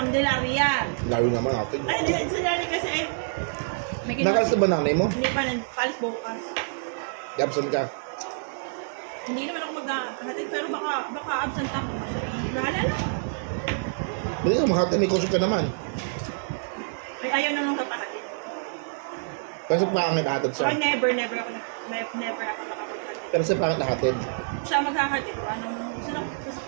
Layo naman natin. Ay, hindi, sa Lani kasi eh. May Nakalas na ba nanay mo? Hindi pa, palis bukas. Absent ka. Hindi naman ako maghahatid, pero baka absent ako. Bahala na. Hindi ka makata, may kusog ka naman. Ay, ayaw na nung kapahatid. Kasi pangit nahatid siya. Ay, never ako nakapaghatid. Pero sa pangit nahatid. Siya maghahatid. Anong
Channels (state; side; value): silent; left; digital silence